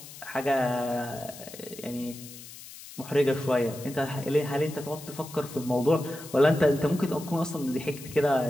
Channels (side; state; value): left; noise; hiss, 15 dB below the sound